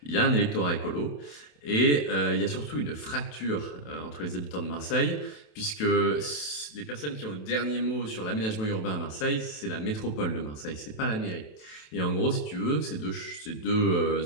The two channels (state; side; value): late; right; 27 ms